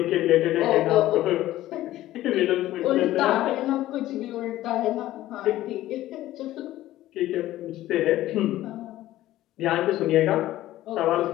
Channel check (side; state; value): right; quieter; 14.9 dB